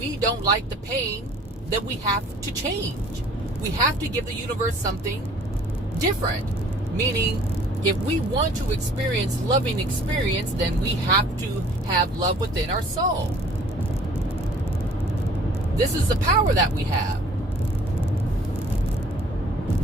don't like the pain, then we have to change. We have to give the universe something different. Meaning, if we want to experience loving experience, then we have to have love within our soul. This is the power that we have.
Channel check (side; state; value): both; normal; correlation 0.53